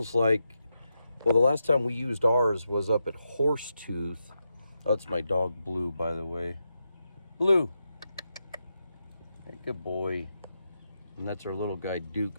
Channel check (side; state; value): both; inverted; correlation -0.86